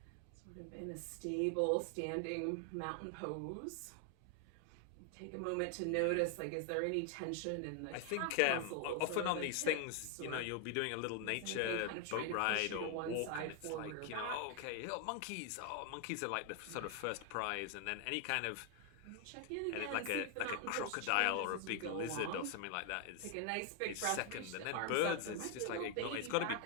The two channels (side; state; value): both; different; correlation 0.00